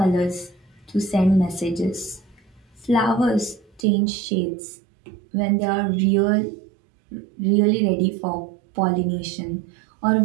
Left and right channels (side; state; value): left; drops out; at 3.9 s